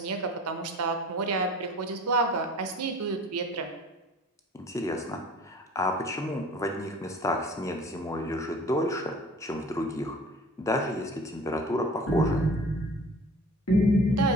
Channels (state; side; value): normal; both; correlation 0.45